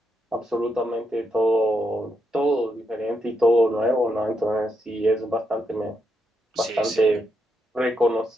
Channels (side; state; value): both; normal; correlation 0.81